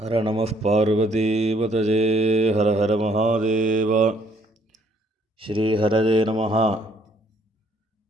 ஹர நம பார்வதீபதஜே ஹர ஹர மகாதேவ. ஸ்ரீஹரஜே நம.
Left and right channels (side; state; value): both; normal; correlation 0.65